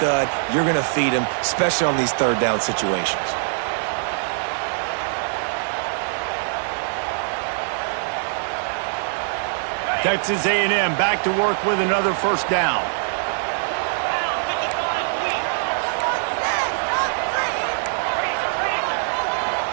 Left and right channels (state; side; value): silent; left; digital silence